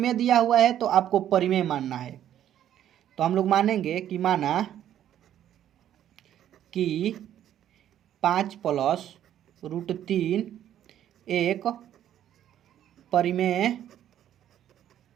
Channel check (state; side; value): quieter; left; 11.0 dB